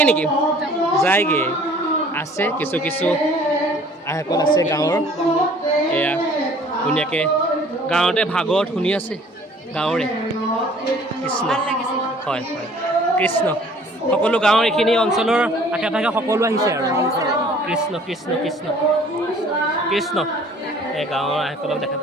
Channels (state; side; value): normal; both; correlation 0.53